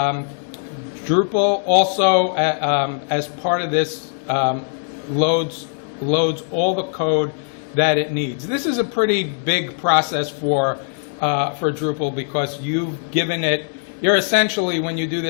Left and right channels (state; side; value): silent; right; digital silence